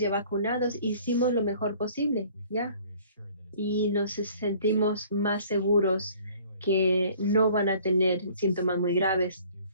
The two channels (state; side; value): inverted; both; correlation -0.54